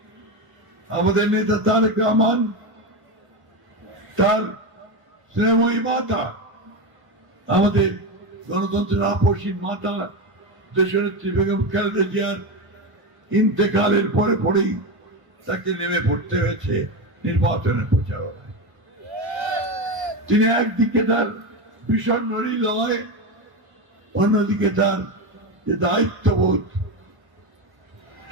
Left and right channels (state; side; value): late; left; 1.0 ms